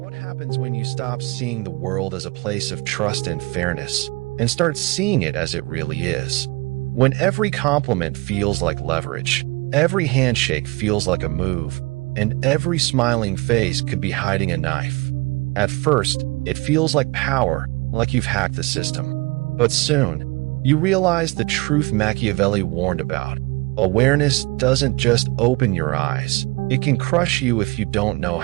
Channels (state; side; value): quieter; left; 24.8 dB